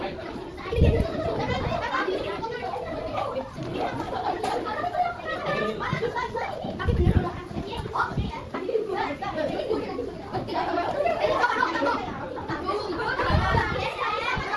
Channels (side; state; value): both; identical; correlation 1.00